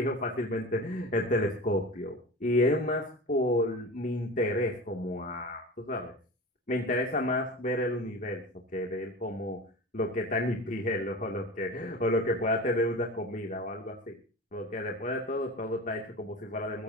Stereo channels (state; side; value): normal; both; correlation 0.32